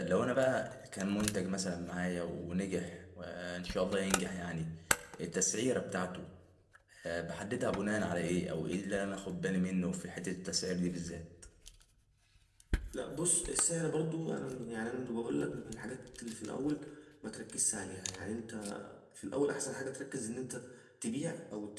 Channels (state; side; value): identical; both; correlation 1.00